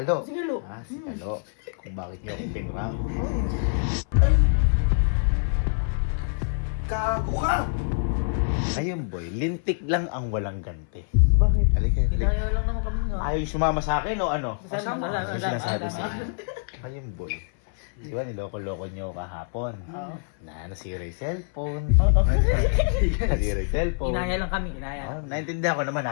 Ah, si Kalo. Kung bakit niyo ako pinrang. Kago ka! Ayun, boy. Lintik lang ang walang ganti. Bakit? Halika. Kinaya lang naman kami nga. Ayaw sumama sa akin o ano? Kasama. Ano sinasabi sa akin? Ayun, boy. Di ba, niloko-loko niyo kahapon? Oo. Nasira yung cellphone. Nasira yung cellphone. Kinaya lang kami, kinaya. Oh, naintindihan ko naman,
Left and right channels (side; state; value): right; silent; 58 dB below the other